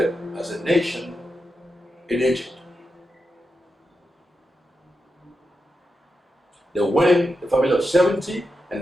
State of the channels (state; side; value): normal; both; correlation 0.87